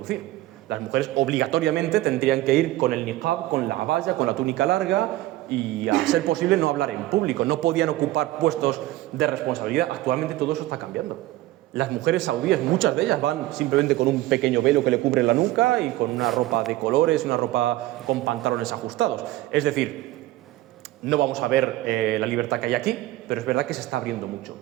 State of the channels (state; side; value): quieter; left; 16.6 dB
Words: Las mujeres obligatoriamente tendrían que ir con el niqab, con la abaya, con la túnica larga y, a ser posible, no hablar en público. No podían ocupar puestos de responsabilidad. Actualmente todo eso está cambiando. Las mujeres saudíes, muchas de ellas, van simplemente con un pequeño velo que le cubre la nuca y con una ropa de colores, una ropa con pantalones ajustados. Es decir, no vamos a ver la libertad que hay aquí, pero es verdad que se está abriendo mucho.